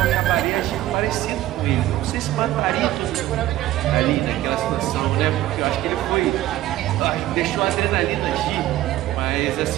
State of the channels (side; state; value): left; quieter; 14.8 dB